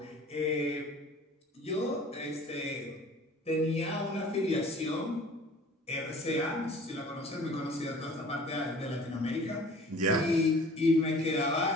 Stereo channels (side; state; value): both; normal; correlation 0.47